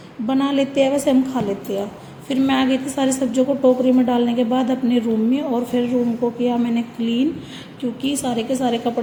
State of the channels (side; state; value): both; identical; correlation 1.00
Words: बना लेते हैं वैसे हम खा लेते हैं। फिर मैं आ गई थी सारी सब्जियों को टोकरी में डालने के बाद अपने रूम में, और फिर रूम को किया मैंने क्लीन, क्योंकि सारे के सारे